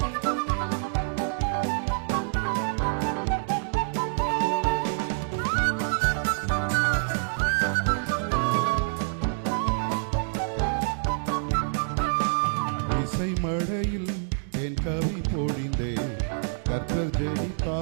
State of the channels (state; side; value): silent; left; digital silence